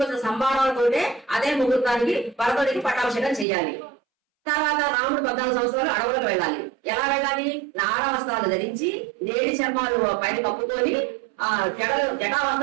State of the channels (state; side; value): drops out; left; at 3.5 s